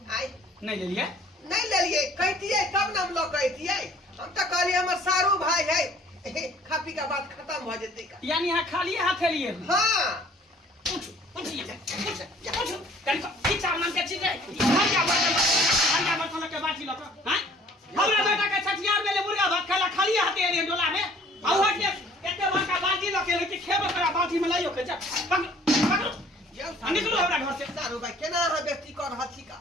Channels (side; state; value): both; normal; correlation 0.55